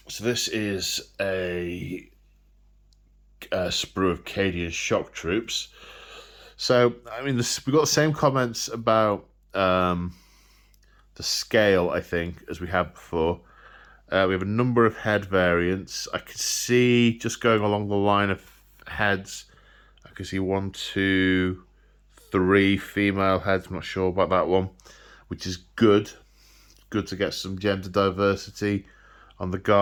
So this is a sprue of Cadian shock troops. So, I mean, we got the same comments about the scale, I think, as we had before. We have a number of head variants. I could see, just going along the line of heads, I could see 1, 2, 3 female heads. I'm not sure about that one, which is good. Good to get some gender diversity on the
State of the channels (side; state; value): both; identical; correlation 1.00